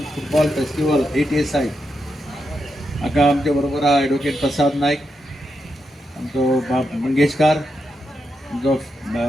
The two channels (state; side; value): normal; both; correlation 0.85